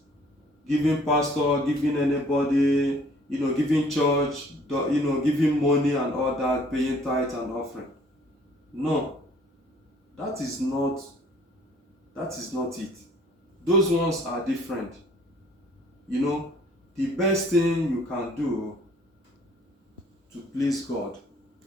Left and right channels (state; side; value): normal; both; correlation 0.57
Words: giving pastor, giving anybody, giving church, giving money and all that, paying tithe and offering. No, that is not it. Those ones are different. The best thing you can do to please God,